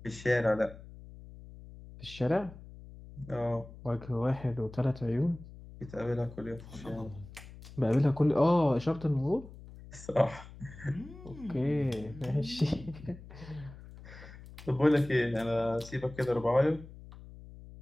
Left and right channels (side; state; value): left; noise; hum, 17 dB below the sound